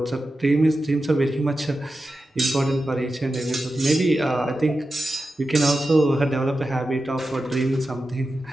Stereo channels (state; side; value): normal; both; correlation 0.92